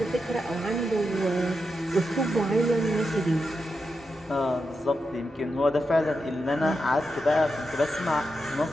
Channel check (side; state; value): both; normal; correlation 0.87